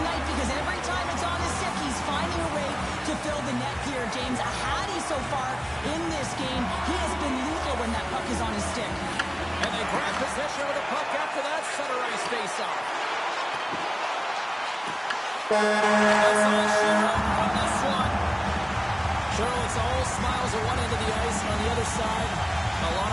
because every time it's on his stick, he's finding a way to fill the net here, James. A Hattie so far in this game. He has been lethal when that puck is on his stick. And they grab possession of the puck after that center ice face-off. That's all Cheryl on this one. Cheryl, it's all smiles at one end of the ice, and on the other side, a lot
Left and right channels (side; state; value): both; identical; correlation 1.00